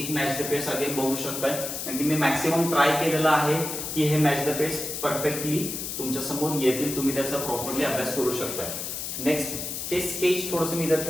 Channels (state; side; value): noise; left; hiss, 5 dB below the sound